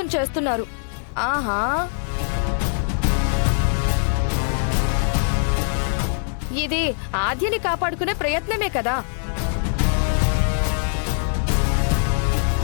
చేస్తున్నారు. ఆహా, ఇది ఆద్యని కాపాడుకునే ప్రయత్నమే కదా.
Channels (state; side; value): silent; right; 64 dB below the other